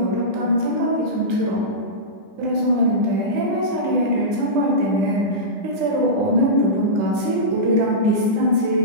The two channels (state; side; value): late; left; 10 ms